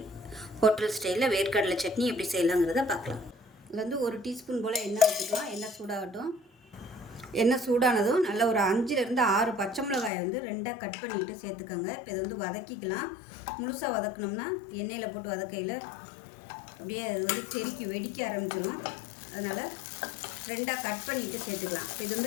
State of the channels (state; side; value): drops out; right; at 10.1 s